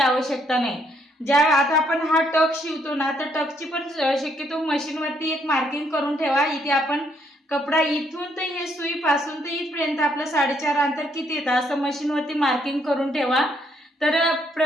नाही। आता आपण हा टक शिवतो ना, तर टकची पण शक्यतो मशीनवरती एक मार्किंग करून ठेवा। इथे आपण कपडा इथून तर हे सुई पासून तर इथपर्यंत आपलं 4.5 अंतर किती येतं असं मशीनवरती मार्किंग करून ठेवा। तर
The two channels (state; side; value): normal; both; correlation 0.71